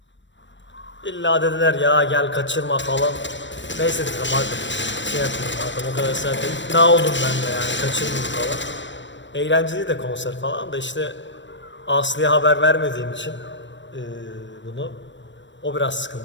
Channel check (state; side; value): late; right; 0.53 ms